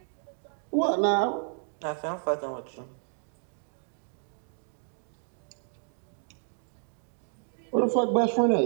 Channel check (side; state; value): left; silent; 57 dB below the other